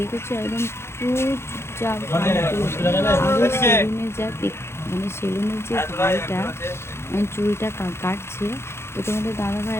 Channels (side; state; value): right; late; 0.12 ms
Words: একদম পুরো চুপচাপ, আরও সেলুনে যা মানে সেলুনের যে ভাইটা চুলটা কাটছে, তো তোমাদের দাদা